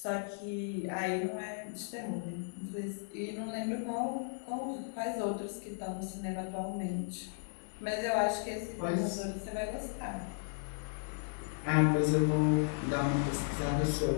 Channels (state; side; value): silent; right; digital silence